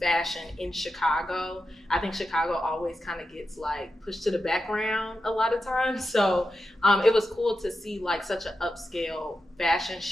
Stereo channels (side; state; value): both; normal; correlation 0.90